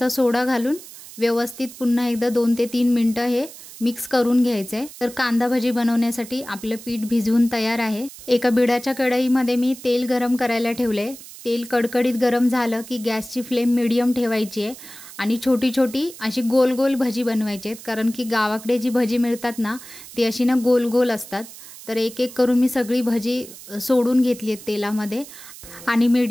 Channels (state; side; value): noise; right; hiss, 16 dB below the sound